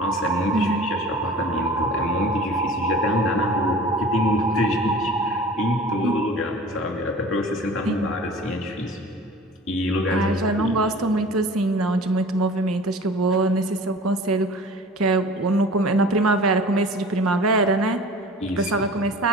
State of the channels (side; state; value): both; normal; correlation 0.42